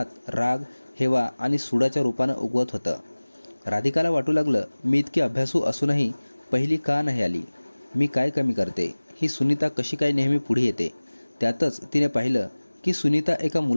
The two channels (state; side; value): inverted; both; correlation -1.00